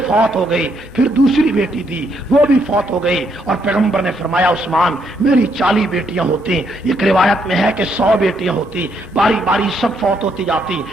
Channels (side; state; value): both; normal; correlation 0.74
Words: فوت ہو گئی، پھر دوسری بیٹی دی وہ بھی فوت ہو گئی، اور پیغمبر نے فرمایا عثمان میری 40 بیٹیاں ہوتی، ایک روایت میں ہے کہ 100 بیٹیاں ہوتی، باری باری سب فوت ہوتی جاتی،